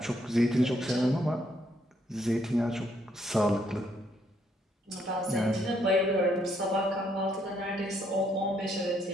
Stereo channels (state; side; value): normal; both; correlation 0.72